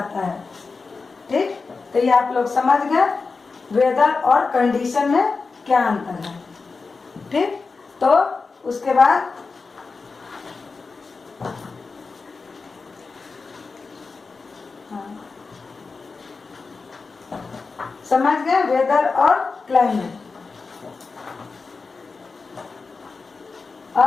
है। ठीक, तो ये आप लोग समझ गए वेदर और कंडीशन में क्या अंतर है। ठीक, तो उसके बाद समझ गए वेदर और क्लाइमेट।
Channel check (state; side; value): quieter; right; 4.4 dB